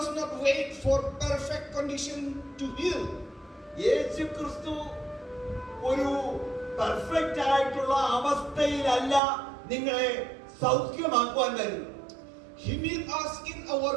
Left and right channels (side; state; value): left; drops out; at 9.2 s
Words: not wait for perfect condition to heal. യേശു ക്രിസ്തു ഒരു പെർഫെക്റ്റ് ആയിട്ടുള്ള അവസ്ഥയിലല്ല നിങ്ങളെ സൗഖ്യമാക്കുവാൻ വരുന്നത്. He meets us in our